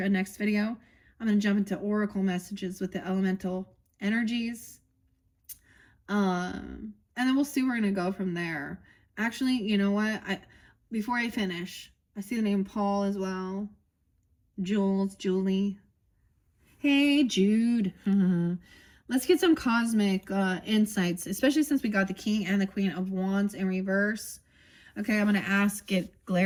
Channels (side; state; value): both; identical; correlation 1.00